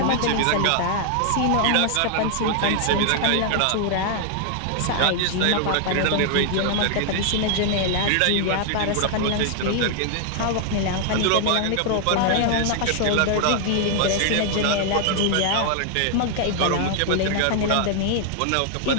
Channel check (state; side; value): different; both; correlation 0.00